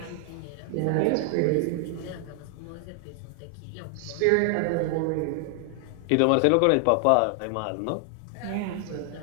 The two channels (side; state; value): both; different; correlation 0.00